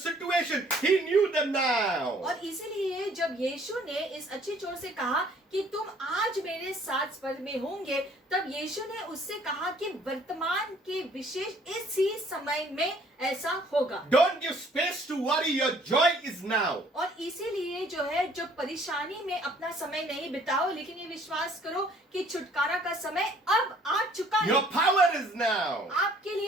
he knew them now. और इसीलिए जब यीशु ने इस अच्छे चोर से कहा कि तुम आज मेरे साथ स्वर्ग में होंगे, तब यीशु ने उससे कहा कि वर्तमान के विशेष इसी समय में ऐसा होगा। Don't give space to worry, your joy is now. और इसीलिए जो है, जो परेशानी में अपना समय नहीं बिताओ, लेकिन ये विश्वास करो कि छुटकारा का समय अब आ चुका है। Your power is now. आपके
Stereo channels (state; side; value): normal; both; correlation 0.59